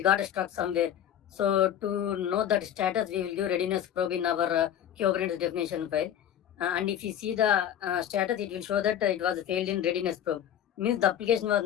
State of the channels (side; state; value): right; quieter; 10.2 dB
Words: got stuck somewhere. So to know that status, we will do readiness probe in our Kubernetes definition file. And if you see the status, it will show that it was failed in readiness probe. Means the application was